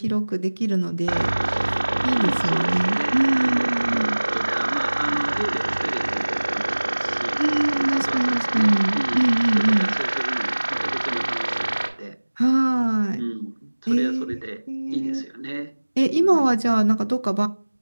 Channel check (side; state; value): both; inverted; correlation -1.00